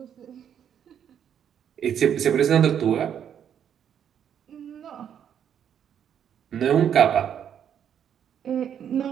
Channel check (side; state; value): left; quieter; 8.9 dB